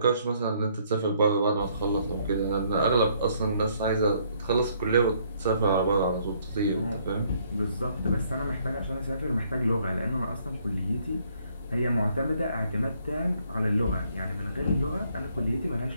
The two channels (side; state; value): both; inverted; correlation -0.67